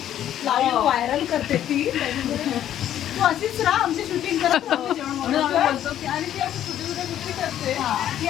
लाईव्ह व्हायरल करते ती. तू अशीच राहा, आमची शूटिंग करत राहा, जेवण बनवतो. आणि ती अशी छोटी छोटी गोष्टी करते. ती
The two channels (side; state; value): right; quieter; 11.2 dB